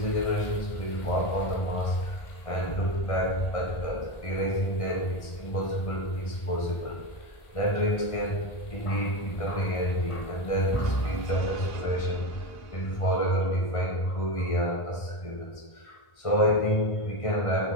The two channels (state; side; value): late; right; 1.4 ms